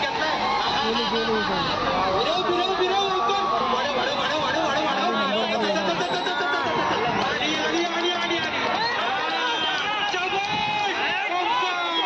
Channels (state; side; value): identical; both; correlation 1.00